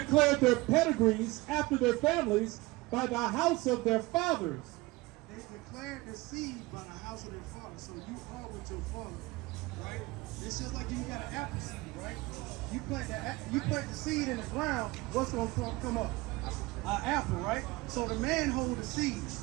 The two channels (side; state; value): left; quieter; 21.6 dB